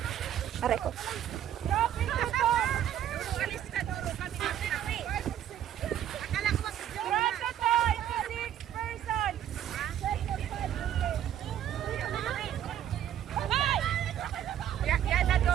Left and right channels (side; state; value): left; quieter; 10.7 dB